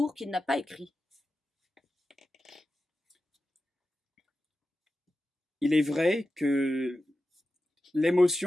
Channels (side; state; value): both; normal; correlation 0.92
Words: qu'il n'a pas écrit. Il est vrai que